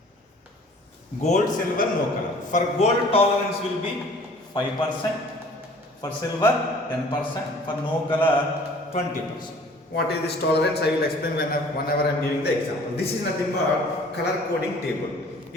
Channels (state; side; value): normal; both; correlation 0.51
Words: Gold, silver, no color. For gold, tolerance will be 5%. For silver, 10%. For no color, 20%. What is this tolerance? I will explain whenever I am giving the example. This is nothing but color coding table.